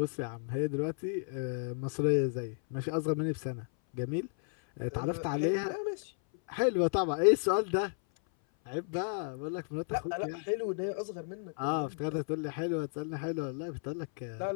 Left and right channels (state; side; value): silent; right; 56 dB below the other